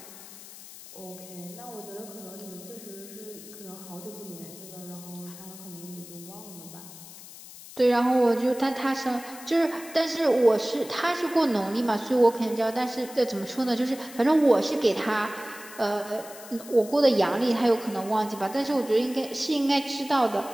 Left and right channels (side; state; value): left; noise; hiss, 16 dB below the sound